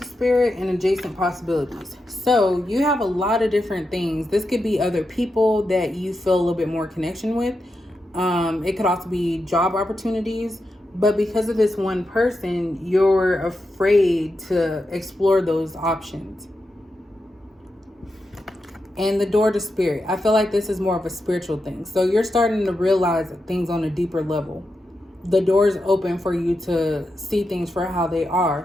spirit and adjacent possibilities. So you have a lot of different things. This could be other people that you feel a little bit more connection with. It could also be job opportunities. But because of this one person, you're afraid to explore those options. And the door to spirit. I feel like this is more of a spiritual thing. So you're starting to realize things on a deeper level. The door is open for you to see things for how they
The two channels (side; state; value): both; normal; correlation 0.87